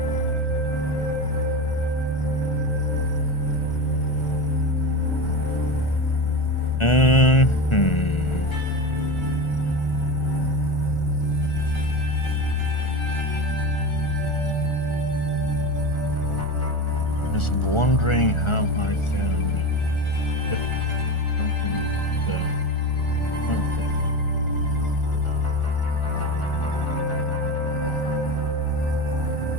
Just wondering how I can get something something.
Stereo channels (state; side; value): late; right; 1.4 ms